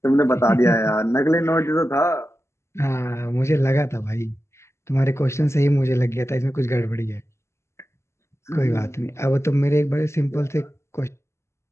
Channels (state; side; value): late; right; 0.13 ms